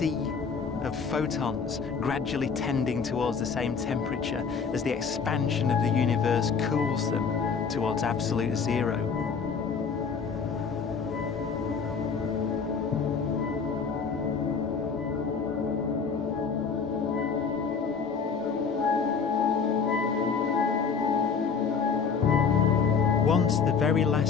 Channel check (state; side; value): quieter; right; 5.7 dB